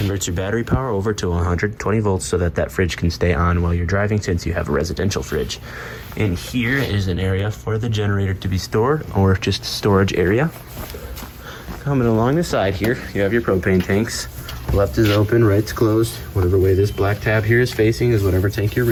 your battery power over to 120 volts so that that fridge can stay on while you're driving, since you have a residential fridge. And here is an area for the generator to be stored, or just storage area. Coming along the side here, you have your propane tanks. Left is open, right's closed. Whatever way this black tab here is facing is whatever tank you're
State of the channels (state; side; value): identical; both; correlation 1.00